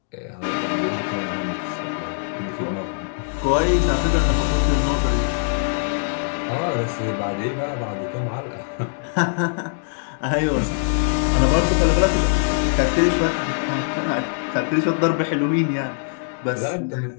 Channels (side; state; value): right; silent; digital silence